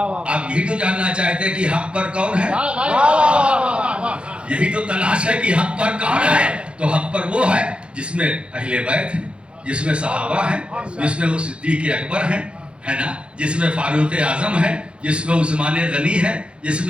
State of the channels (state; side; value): late; left; 0.058 ms